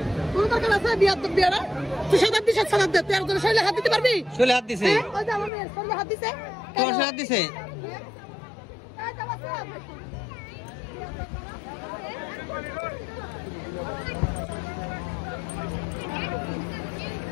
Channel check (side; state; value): right; drops out; at 5.5 s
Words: কোনো দরকার আছে বিয়ারা? তুই সাদার দিছে, সাদার দে, তুই একজনের শরীরে হাত দিতে পারবি? চলে হাত দিছে, ওই যে আমার মেয়ের শরীরে হাত দিছে, তোমার হাত দিছে।